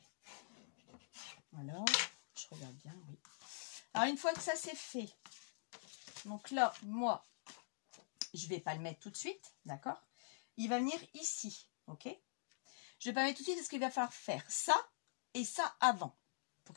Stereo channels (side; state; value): right; silent; digital silence